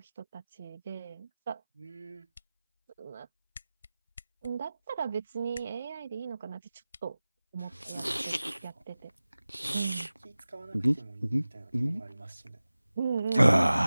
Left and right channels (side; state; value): both; inverted; correlation -0.97